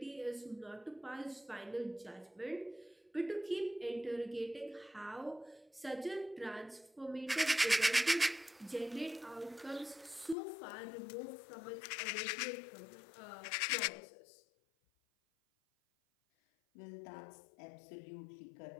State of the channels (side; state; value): right; drops out; at 10.4 s